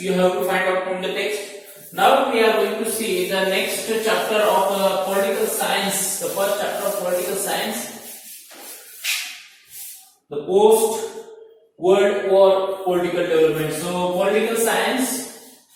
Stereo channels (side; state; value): both; identical; correlation 1.00